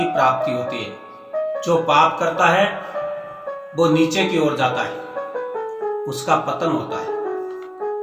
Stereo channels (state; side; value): identical; both; correlation 1.00